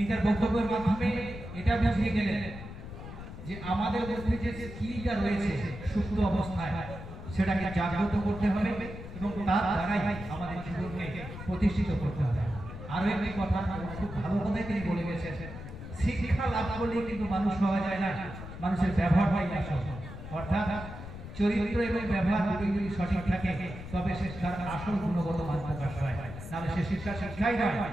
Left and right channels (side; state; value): left; noise; rumble, 11 dB below the sound